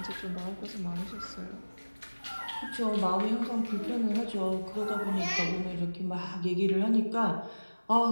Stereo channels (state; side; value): inverted; both; correlation -1.00